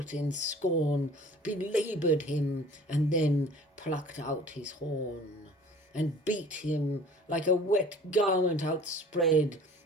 in scorn, belaboured him, and then plucked out his horn, and beat him like a wet garment outspread,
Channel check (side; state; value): both; normal; correlation 0.47